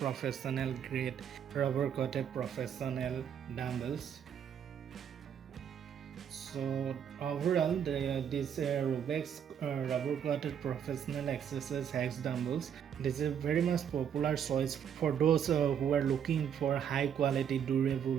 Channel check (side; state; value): left; quieter; 8.5 dB